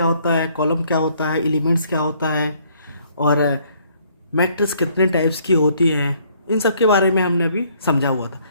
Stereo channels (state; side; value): inverted; both; correlation -0.64